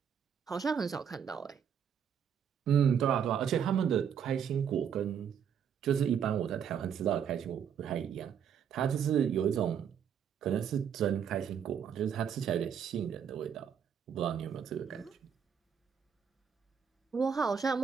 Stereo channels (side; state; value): left; quieter; 8.0 dB